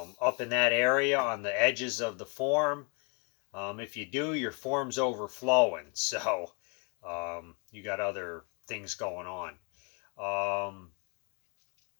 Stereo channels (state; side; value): quieter; right; 33.0 dB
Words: in that area on the edges of the form. If you do, your form's overflowing. So you got other things going on.